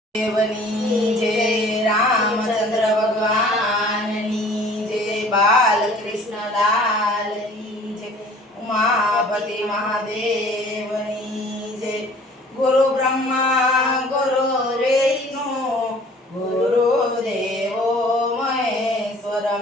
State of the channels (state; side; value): normal; both; correlation 0.51